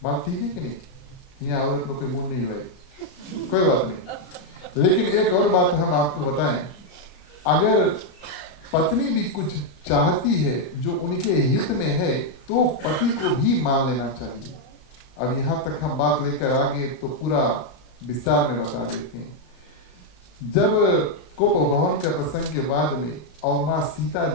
बात ठीक है कि नहीं? यहाँ औरत लोग कोई मूड नहीं लाई, कोई बात नहीं। लेकिन एक और बात हम आपको बताएं, अगर पत्नी भी कुछ चाहती है जो उनके हित में है तो पति को भी मान लेना चाहिए। अब यहाँ तक हम बात लेकर आगे तो पूरा विस्तार में बता देते हैं। जब कोप भवन के प्रसंग के बाद में और माँ सीता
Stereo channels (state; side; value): late; right; 34 ms